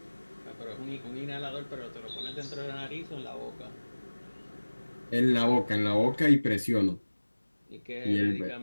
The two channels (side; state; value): both; inverted; correlation -1.00